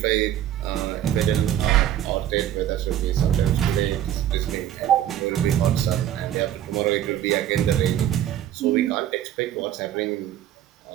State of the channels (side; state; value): left; quieter; 11.5 dB